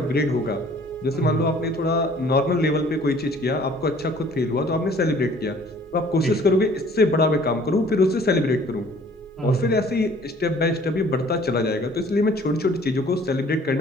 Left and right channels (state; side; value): normal; both; correlation 0.54